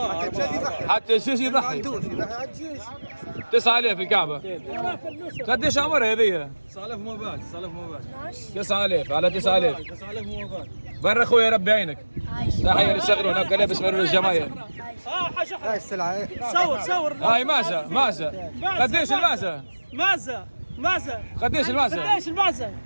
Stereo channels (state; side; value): inverted; both; correlation -1.00